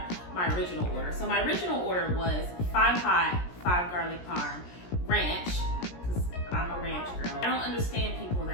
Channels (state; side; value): late; right; 17 ms